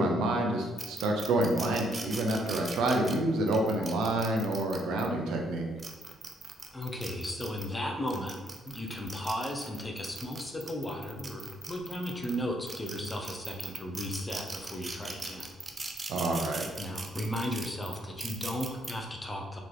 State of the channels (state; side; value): normal; both; correlation 0.70